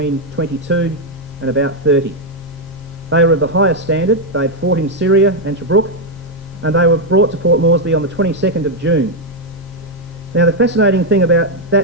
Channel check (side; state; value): both; normal; correlation 0.01